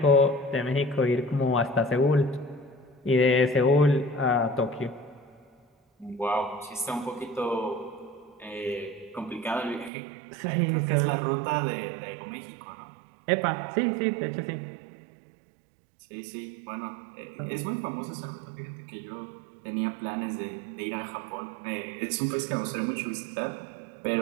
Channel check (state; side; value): drops out; left; at 9.9 s